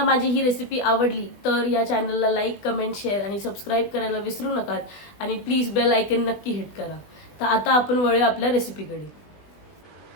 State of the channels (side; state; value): right; late; 20 ms